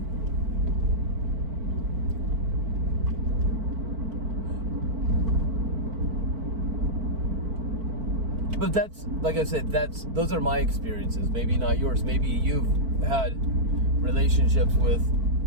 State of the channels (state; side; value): late; left; 4.5 ms